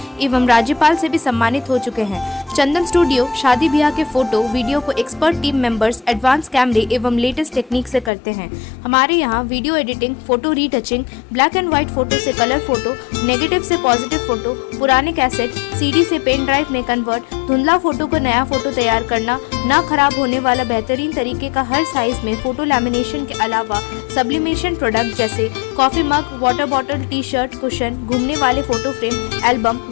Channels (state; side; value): drops out; right; at 8.1 s